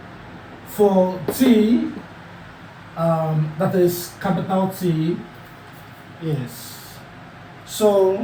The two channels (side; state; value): both; identical; correlation 1.00